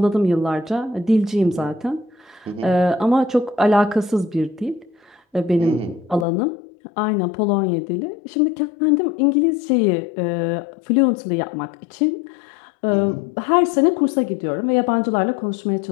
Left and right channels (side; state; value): right; drops out; at 6.2 s